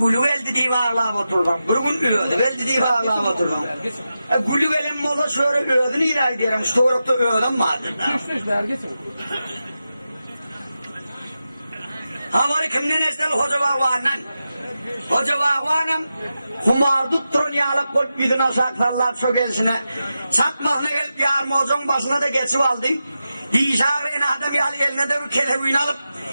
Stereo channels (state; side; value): inverted; both; correlation -0.91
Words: geldi diye ağırlayıp oturdum. Bir gün ölüdü geldi diye ağırlayıp oturdum. Gülü gelin mola şöyle ölüdüğünü ilah ederim. Stoğrukta ölüdüm madem. Havari kimden esnel hoca bağvanan. Hoca bağvanım kumar tutturun yağlık koyup gidin saklarlar çökelsine. Çatmağına gelip yarmozun başına da geçip aldım. Dişarına adam eline de bir kelebuyunu alıp